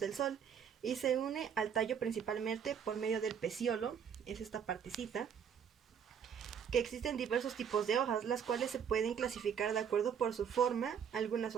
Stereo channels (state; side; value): quieter; left; 7.7 dB